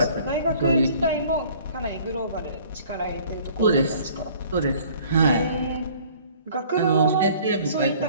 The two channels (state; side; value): inverted; both; correlation -0.53